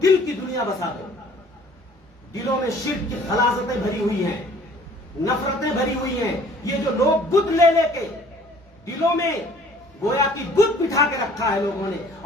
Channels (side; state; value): both; normal; correlation 0.54